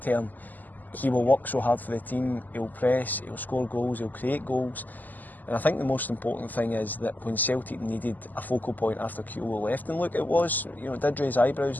term. He will work so hard for the team, he'll press, he'll score goals, he'll create goals. And I think the most important thing is that when Celtic needed a focal point after Kyogo left, and look, it did raise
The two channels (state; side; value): late; right; 0.084 ms